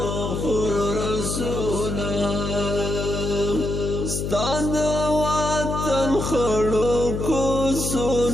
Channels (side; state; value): left; noise; hum, 3 dB below the sound